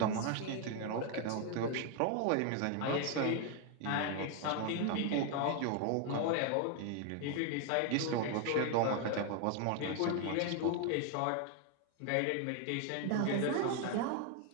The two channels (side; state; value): both; different; correlation 0.01